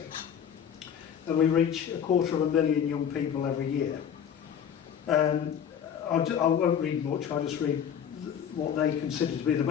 and we reach 250,000 young people every year. I won't read much, I'll just read what they consider to be the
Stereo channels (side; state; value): right; quieter; 8.4 dB